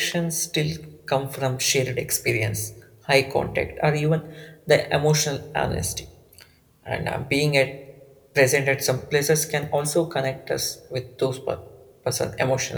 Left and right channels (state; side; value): identical; both; correlation 1.00